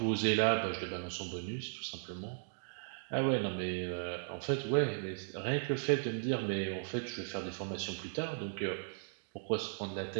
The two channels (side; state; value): left; silent; digital silence